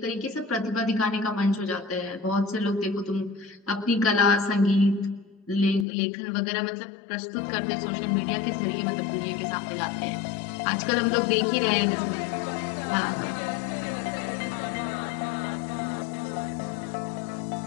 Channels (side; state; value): right; drops out; at 5.9 s